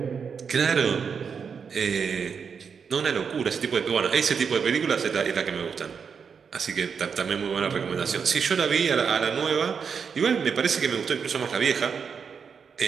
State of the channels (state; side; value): quieter; left; 6.3 dB